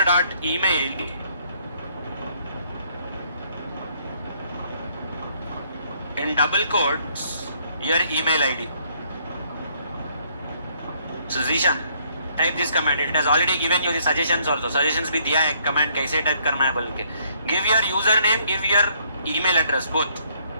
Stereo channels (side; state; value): both; inverted; correlation -0.67